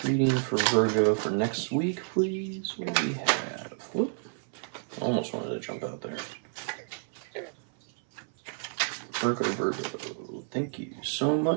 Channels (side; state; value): left; silent; 58 dB below the other